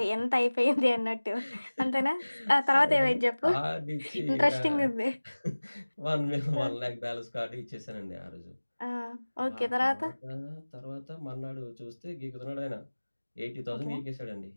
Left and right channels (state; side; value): inverted; both; correlation -1.00